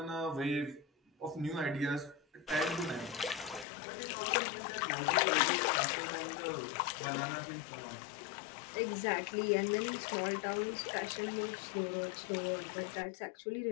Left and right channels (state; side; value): drops out; right; at 3.7 s